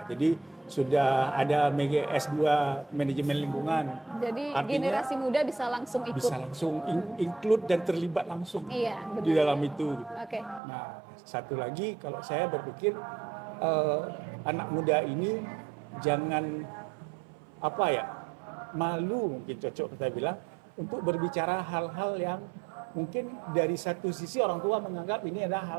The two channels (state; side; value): drops out; left; at 10.6 s